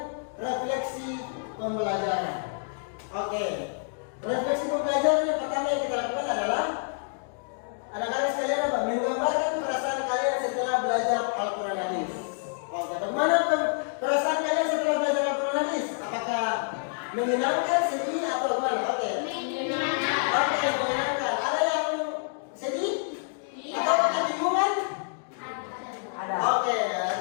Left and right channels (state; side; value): silent; right; digital silence